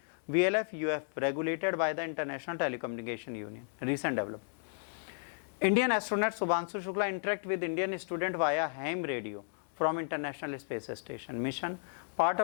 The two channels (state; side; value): silent; right; digital silence